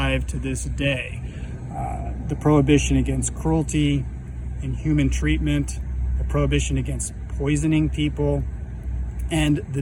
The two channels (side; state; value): both; identical; correlation 1.00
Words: to this day. The prohibition against cruelty, inhuman treatment, the prohibition against poisoning people, and